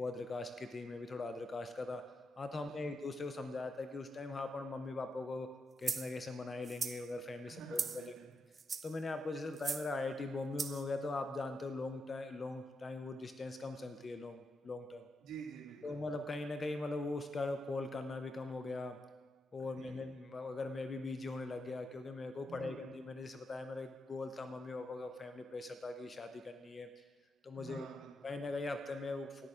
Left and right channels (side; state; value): both; normal; correlation 0.84